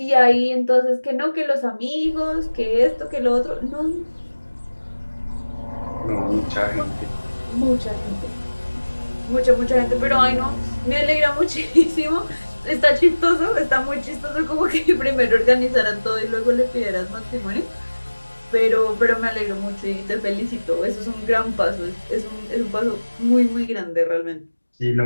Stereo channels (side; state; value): both; inverted; correlation -1.00